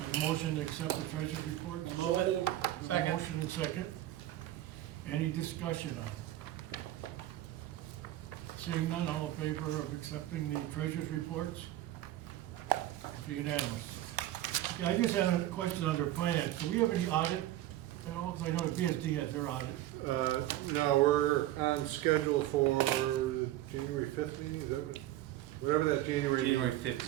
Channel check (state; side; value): quieter; left; 14.4 dB